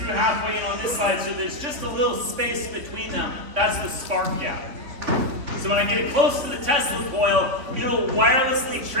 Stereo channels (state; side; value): late; left; 3.8 ms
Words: halfway in on this side, so there's just a little space between them. That's the spark gap. So when I get it close to the Tesla coil, it'll wirelessly